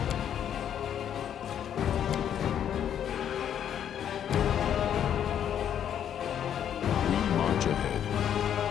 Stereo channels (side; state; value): right; quieter; 9.5 dB